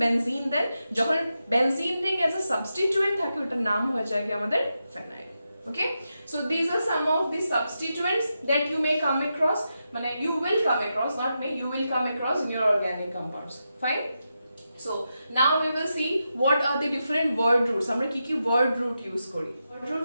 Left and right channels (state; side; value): inverted; both; correlation -0.88